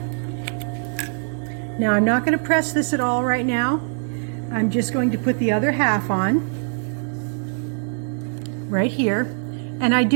Now I'm not going to press this at all right now. I'm just going to put the other half on right here. And I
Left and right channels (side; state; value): left; silent; digital silence